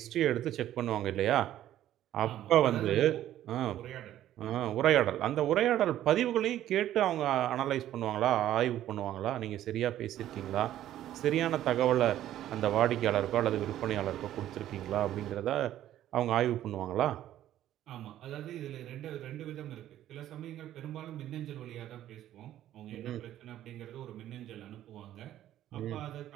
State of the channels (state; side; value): quieter; left; 12.5 dB